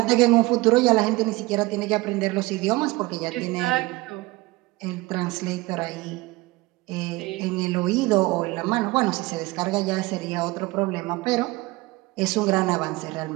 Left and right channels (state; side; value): quieter; left; 21.3 dB